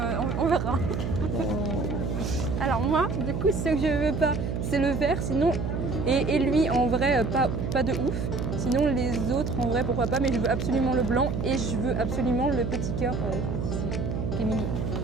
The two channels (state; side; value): noise; right; hum, 2 dB below the sound